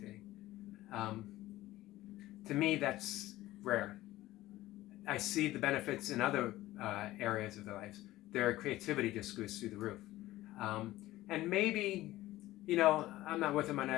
To me, that's rare. I see the benefits in other areas of their lives. Their creativity just goes through the roof. And maybe, I'm not with them on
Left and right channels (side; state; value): right; quieter; 16.4 dB